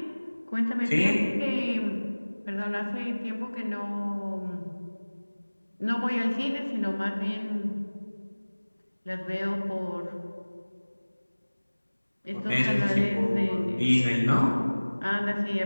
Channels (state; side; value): inverted; both; correlation -1.00